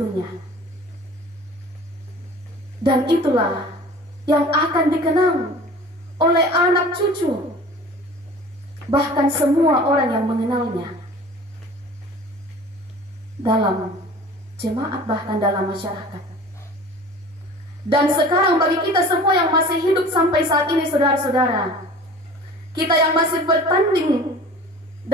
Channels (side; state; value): both; normal; correlation 0.43